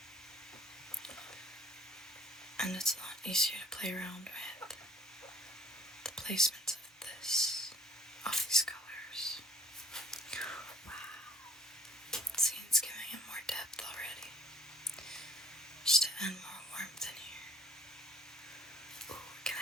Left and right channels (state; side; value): normal; both; correlation 0.56